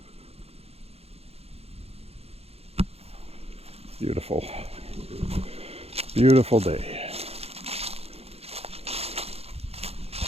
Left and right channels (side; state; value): left; late; 0.29 ms